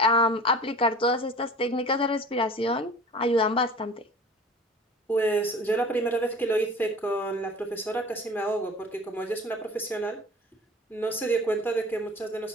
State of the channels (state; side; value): normal; both; correlation 0.42